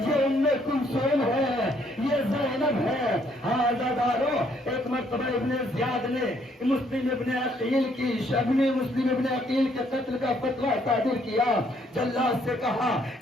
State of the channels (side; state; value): both; normal; correlation 0.68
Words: ام کلثوم ہے، یہ زینب ہے۔ ہاں عزادارو، ایک مرتبہ ابن زیاد نے مسلم ابن عقیل کی مسلم ابن عقیل کے قتل کا فتویٰ صادر کیا، جلاد سے کہا